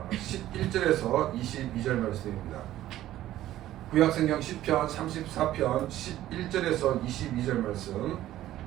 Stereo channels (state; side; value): quieter; left; 13.8 dB